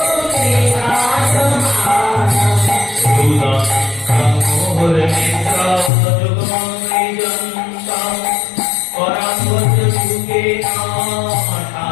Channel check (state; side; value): drops out; right; at 5.9 s